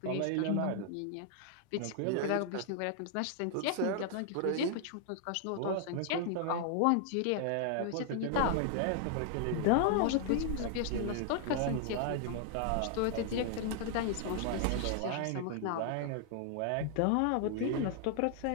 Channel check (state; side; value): different; both; correlation 0.00